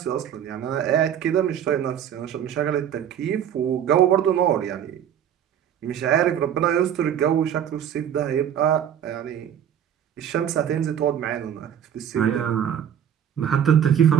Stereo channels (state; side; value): quieter; left; 9.4 dB